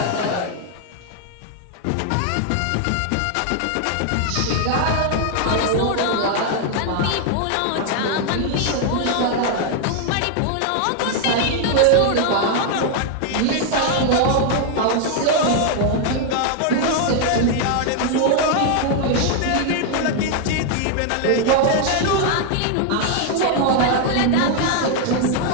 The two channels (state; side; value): different; both; correlation 0.00